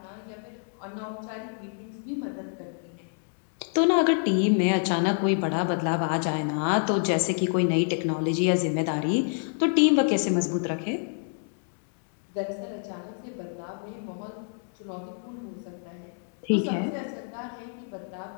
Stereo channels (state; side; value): silent; right; 57 dB below the other